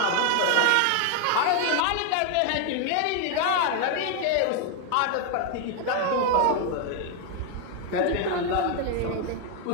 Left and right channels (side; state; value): both; different; correlation 0.00